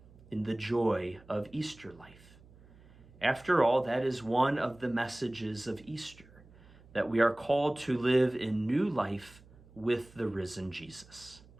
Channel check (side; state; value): right; noise; hum, 24 dB below the sound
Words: in the joy of Easter life. After all, that is one of the messages of Easter, that we are called to live in new life with the risen Jesus.